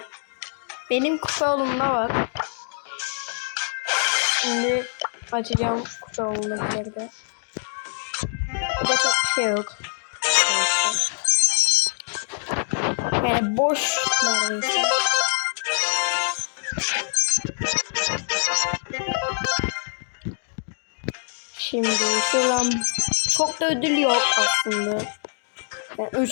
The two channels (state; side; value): silent; right; digital silence